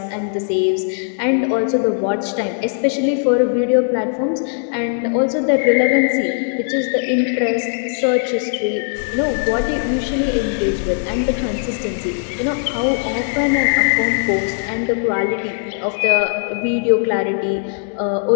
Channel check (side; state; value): right; silent; digital silence